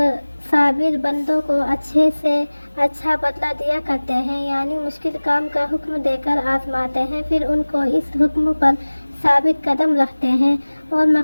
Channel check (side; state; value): both; inverted; correlation -1.00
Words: صابر بندوں کو اچھے سے اچھا بدلہ دیا کرتے ہیں، یعنی مشکل کام کا حکم دے کر آزماتے ہیں، پھر ان کو اس حکم پر ثابت قدم رکھتے ہیں اور